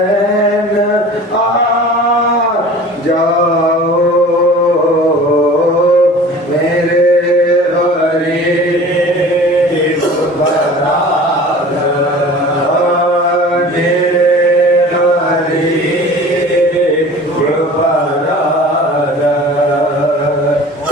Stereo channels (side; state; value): both; normal; correlation 0.42